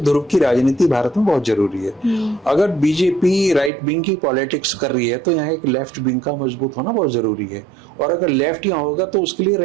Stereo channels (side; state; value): left; drops out; at 3.7 s